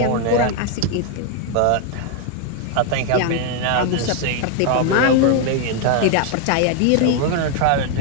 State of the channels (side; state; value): both; different; correlation 0.00